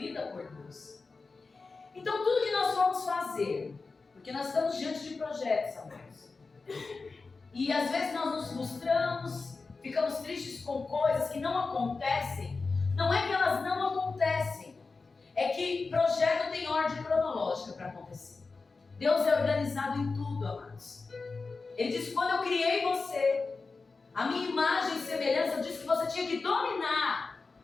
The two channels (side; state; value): right; quieter; 4.1 dB